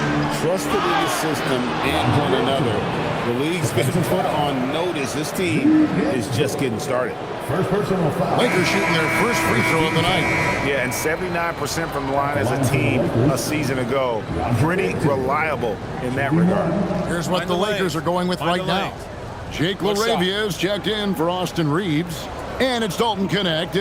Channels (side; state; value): both; identical; correlation 1.00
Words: trusted in the system and one another. The league's been put on notice. This team is just getting started. First personal foul. Lakers shooting their first free throw of the night. Yeah, and 79% from the line as a team a season ago. Pretty reliable in that regard. Here's what the Lakers are going with right now. Jake LaRavia is checked in for Austin Reeves. And it's Dalton Connect